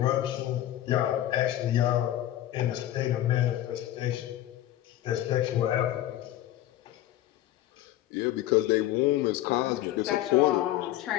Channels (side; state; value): right; quieter; 13.6 dB